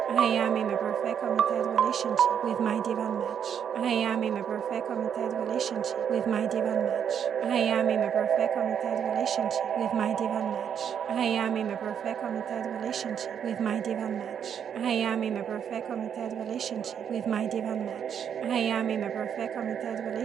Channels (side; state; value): left; quieter; 8.2 dB